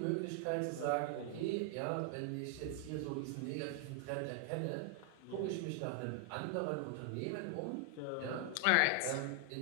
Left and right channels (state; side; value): different; both; correlation 0.00